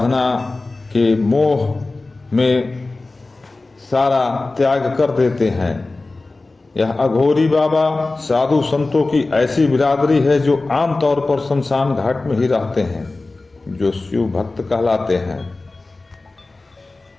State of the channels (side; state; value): right; quieter; 3.3 dB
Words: के मोह में सारा त्याग कर देते हैं। यह अघोरी बाबा साधु संतों की ऐसी बिरादरी है जो आमतौर पर शमशान घाट में ही रहते हैं, जो शिव भक्त कहलाते हैं।